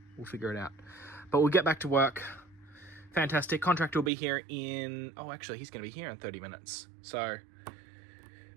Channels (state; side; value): drops out; left; at 4.1 s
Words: We'll figure it out. But we'll get back to work. Fantastic. Contractor will be here in... Oh, actually, he's going to be here in 30 minutes. So